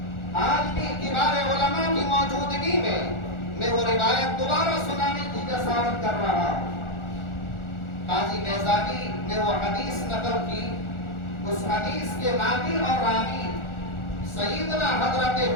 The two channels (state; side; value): late; right; 1.4 ms